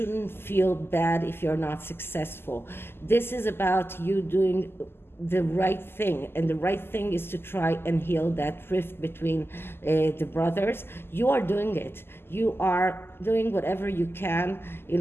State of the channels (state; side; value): late; right; 0.11 ms